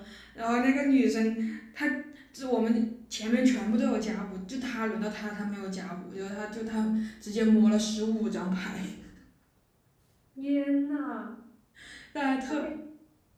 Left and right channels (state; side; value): identical; both; correlation 1.00